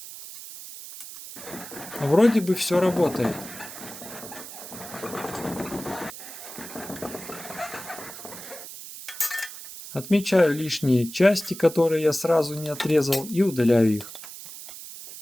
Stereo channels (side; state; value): right; noise; hiss, 13 dB below the sound